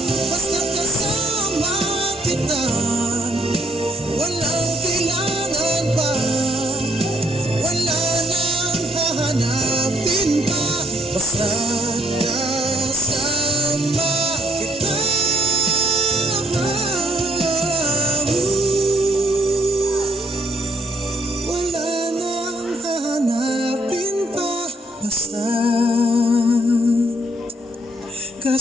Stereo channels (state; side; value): normal; both; correlation 0.69